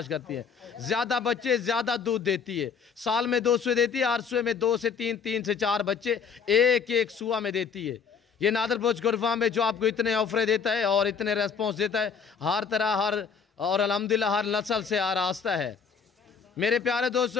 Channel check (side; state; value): right; quieter; 6.2 dB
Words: करती है, ज्यादा बच्चे ज्यादा दूध देती है। साल में 2 सुए देती है, 8 सुए में 2 से 3 3 से 4 बच्चे एक सुआ में देती है। ये नादर भोजकोट फार्म में जो आपको इतने ऑफर देता है और इतने रेस्पॉन्स देता है हर तरह हर, और अल्हम्दुलिल्लाह हर नस्ल से आरास्ता है। मेरे प्यारे